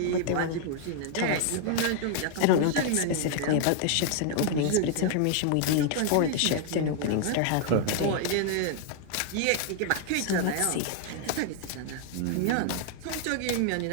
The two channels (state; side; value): different; both; correlation 0.00